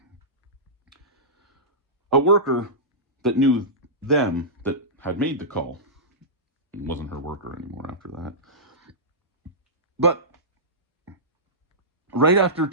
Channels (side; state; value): both; normal; correlation -0.16